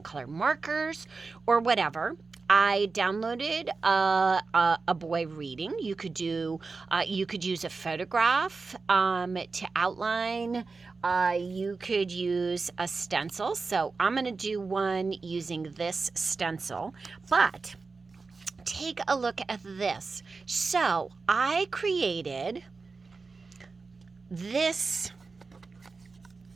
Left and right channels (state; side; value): quieter; left; 4.2 dB